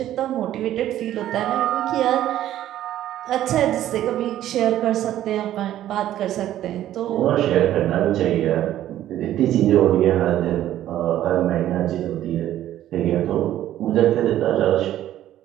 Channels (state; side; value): quieter; left; 12.6 dB